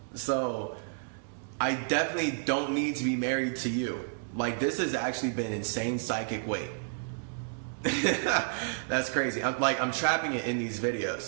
So, I definitely don't need to be married to you. Like, this has actually been insane psychic weight. That's crazy. I'm trapping it in these videos.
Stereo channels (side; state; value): left; silent; digital silence